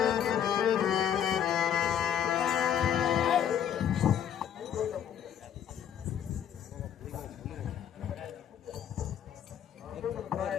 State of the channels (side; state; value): right; quieter; 9.3 dB